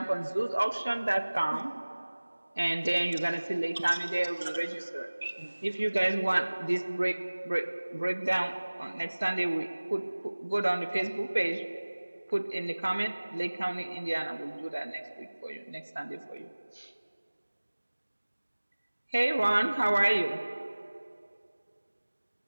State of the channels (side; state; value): both; inverted; correlation -1.00